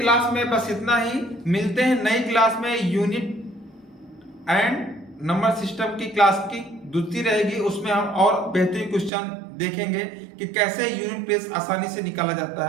में बस इतना ही। मिलते हैं नई क्लास में, यूनिट एंड नंबर सिस्टम की क्लास की दूसरी रहेगी, उसमें हम और बेहतरीन क्वेश्चन देखेंगे कि कैसे यूनिट प्लेस आसानी से निकाला जाता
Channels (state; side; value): drops out; left; at 9.1 s